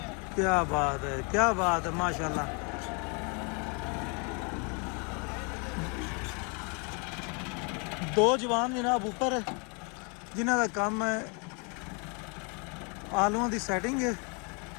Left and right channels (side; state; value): right; quieter; 34.2 dB